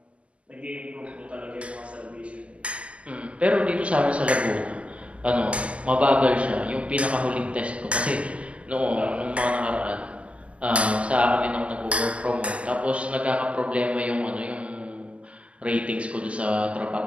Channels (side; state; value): left; late; 0.059 ms